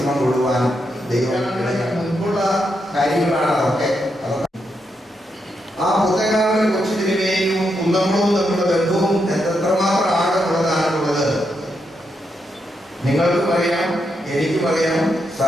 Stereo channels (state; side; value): normal; both; correlation 0.82